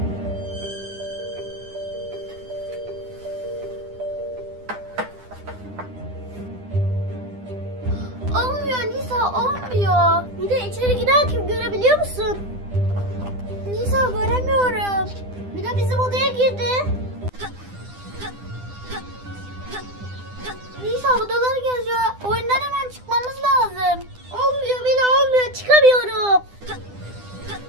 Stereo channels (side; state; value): left; late; 9.9 ms